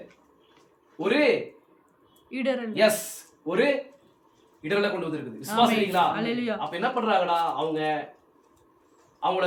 ஒரு இடரலை கொண்டு வந்திருக்குது. விசுவாசிக்கிறீங்களா? அப்ப என்ன பண்றாங்கடா? அவங்கள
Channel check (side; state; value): both; identical; correlation 1.00